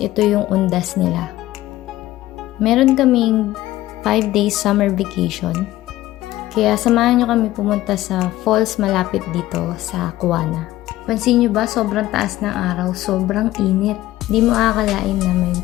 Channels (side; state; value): right; quieter; 15.7 dB